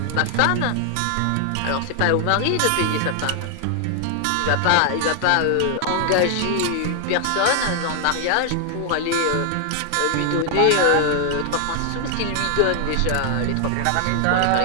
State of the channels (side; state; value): both; different; correlation 0.00